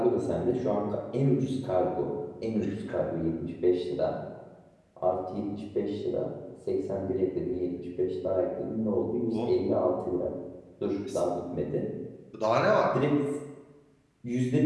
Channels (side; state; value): both; identical; correlation 1.00